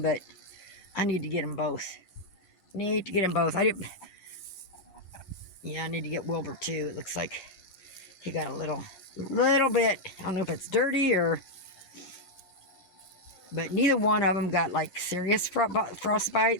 but I need to get them both. I need to get Wilbur too. It looks like he got a little bit. I don't know if it's dirty or... But neither one of them got like serious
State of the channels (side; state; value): right; late; 11 ms